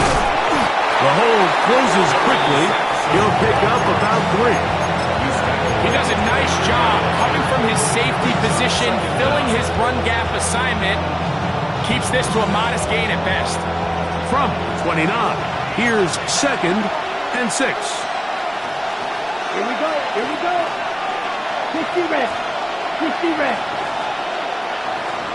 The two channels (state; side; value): identical; both; correlation 1.00